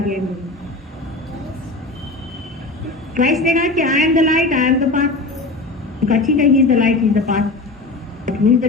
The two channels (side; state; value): right; quieter; 3.2 dB